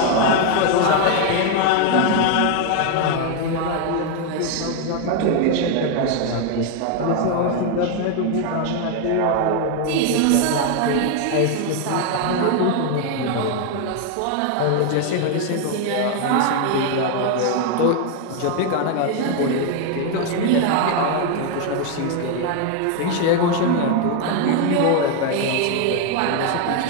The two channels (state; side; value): different; both; correlation 0.01